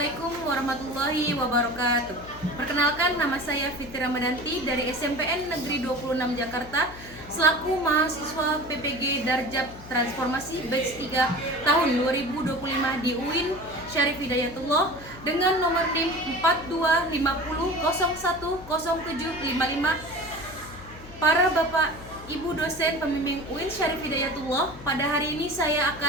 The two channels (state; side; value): noise; left; hum, 17 dB below the sound